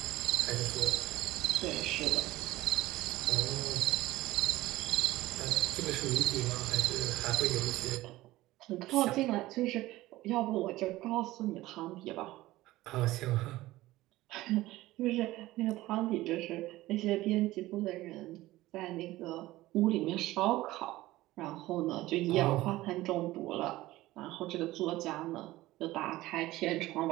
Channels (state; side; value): quieter; left; 17.3 dB